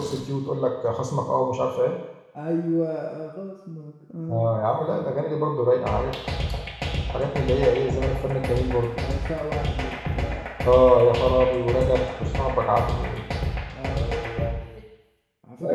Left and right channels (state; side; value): identical; both; correlation 1.00